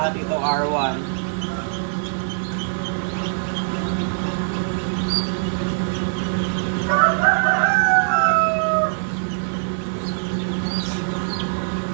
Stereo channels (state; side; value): silent; left; 57 dB below the other